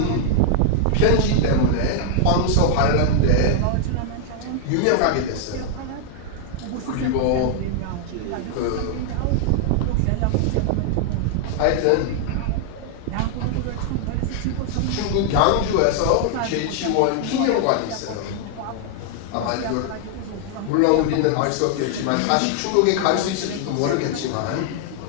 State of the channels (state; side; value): different; both; correlation 0.00